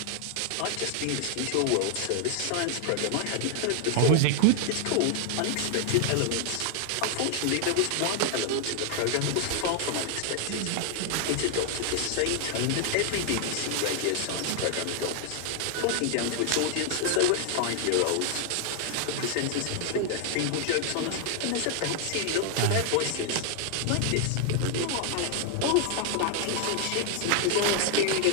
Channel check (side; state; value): both; different; correlation 0.00